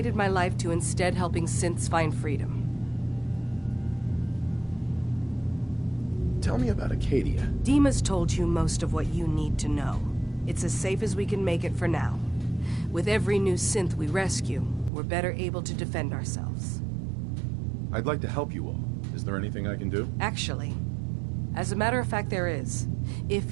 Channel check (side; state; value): left; drops out; at 14.9 s